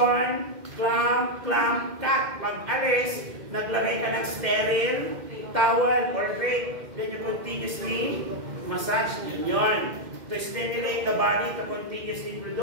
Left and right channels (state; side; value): late; left; 2.1 ms